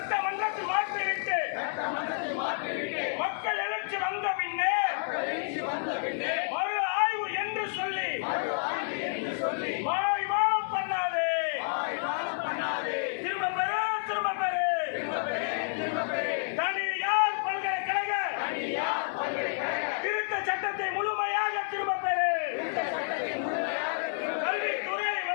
மாற்றிவிட்டு மக்கள் எழுச்சி வந்த பின்னே மறு ஆய்வு என்று சொல்லி மாய்மானம் பண்ணாதே. திரும்ப பெறு தனியார் பல்கலைக்கழக திருத்த சட்டத்தை முழுமையாக திரும்ப பெறு.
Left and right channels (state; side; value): silent; right; digital silence